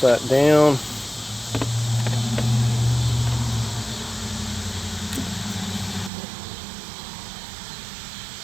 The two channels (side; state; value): left; drops out; at 6.1 s